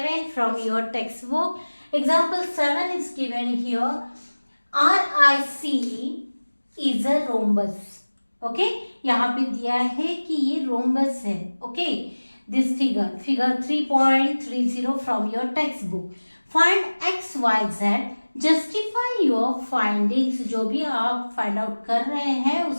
from your textbook. Example 7 is given here. RIC is a rhombus. Okay, यहाँ पे दिया है कि ये rhombus है. Okay, this figure 3.30 from your textbook. Find x, y, z. Justify your findings. जो भी आप फाइंड आउट कर रहे हैं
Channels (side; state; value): both; inverted; correlation -1.00